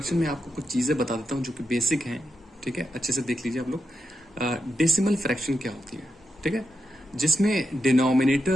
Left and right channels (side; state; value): both; normal; correlation 0.85